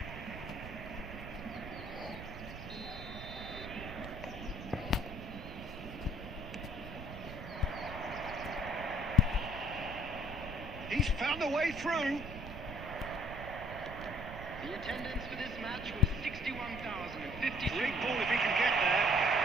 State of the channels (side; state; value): right; noise; rumble, 11 dB below the sound